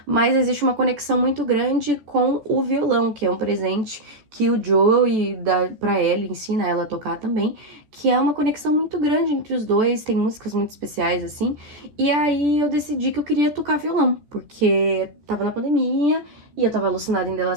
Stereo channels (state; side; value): late; left; 14 ms